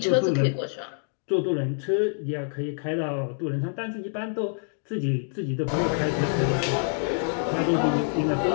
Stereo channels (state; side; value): silent; right; digital silence